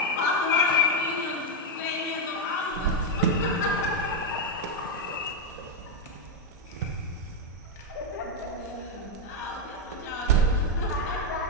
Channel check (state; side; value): normal; both; correlation 0.02